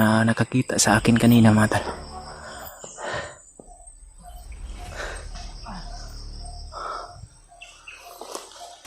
nakakita sa akin kanina mga tol.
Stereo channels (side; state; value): both; identical; correlation 1.00